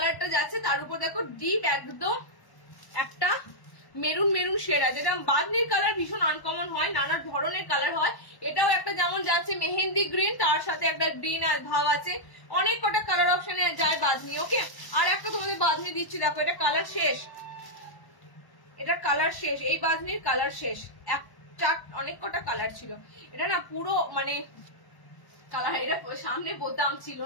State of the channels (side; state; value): right; late; 1.1 ms